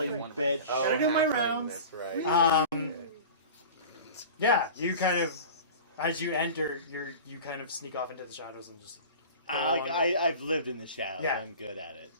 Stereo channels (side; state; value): both; inverted; correlation -0.36